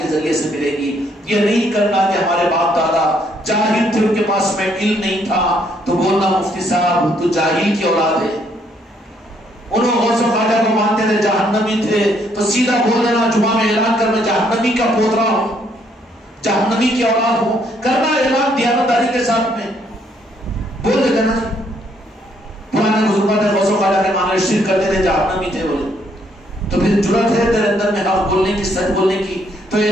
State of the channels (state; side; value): normal; both; correlation 0.69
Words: ذریعے سے ملے گی۔ یہ نہیں کرنا کہ ہمارے باپ دادا جاہل تھے، ان کے پاس میں علم نہیں تھا تو بولنا مفتی صاحب تو جاہل کی اولاد ہے، انہوں غوث و خواجہ کو مانتے تھے، جہنمی تھے، تو سیدھا بول دینا جمعہ میں اعلان کر میں جہنمی کا پوترا ہوں، جہنمی کی اولاد ہوں، کرنا اعلان دیانتداری کے ساتھ میں بول دیتے نا۔ پرانے بزرگوں نے غوث و خواجہ کے معنی شرک کرتے تھے، جہنمی تھے بولے، تو پھر جرأت ہے تیرے اندر میں حق بولنے کی، سچ بولنے کی، تو